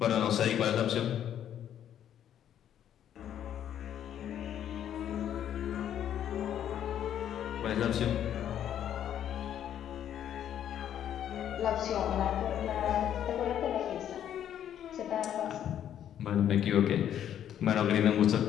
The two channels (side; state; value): right; quieter; 10.2 dB